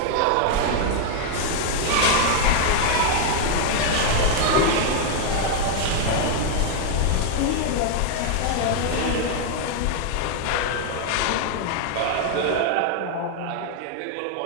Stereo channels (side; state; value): both; different; correlation 0.00